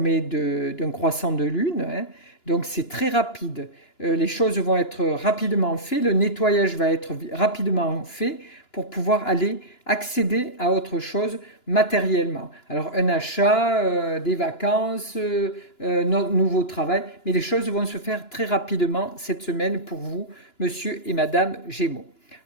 d'un croissant de lune, hein, donc c'est très rapide. Les choses vont être rapidement faites, le nettoyage va être rapidement fait pour pouvoir aller accéder à autre chose matériellement. Alors un achat, des vacances, notre nouveau travail, mais les choses vont se faire très rapidement cette semaine pour vous, monsieur et madame Gémeaux.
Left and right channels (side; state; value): right; late; 2.9 ms